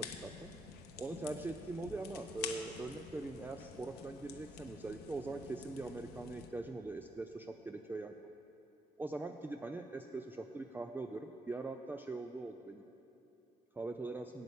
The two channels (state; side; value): normal; both; correlation 0.78